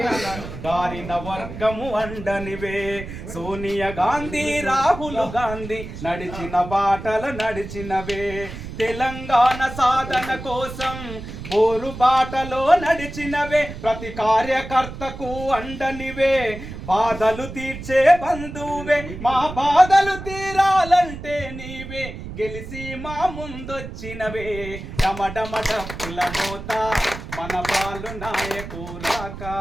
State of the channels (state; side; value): noise; right; rumble, 10 dB below the sound